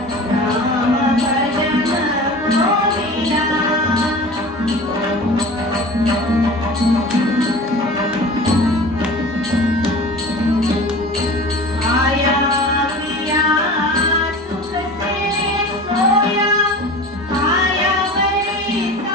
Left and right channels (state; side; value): normal; both; correlation 0.37